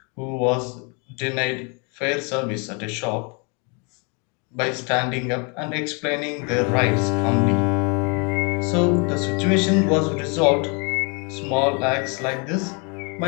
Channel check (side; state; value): right; quieter; 33.7 dB